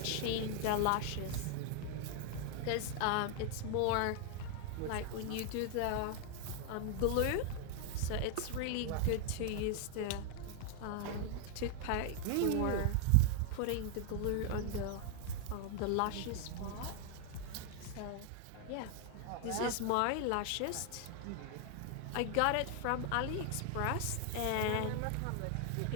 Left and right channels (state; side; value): different; both; correlation 0.00